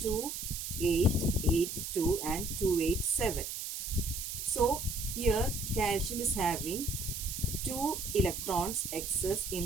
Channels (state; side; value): noise; right; hiss, 5 dB below the sound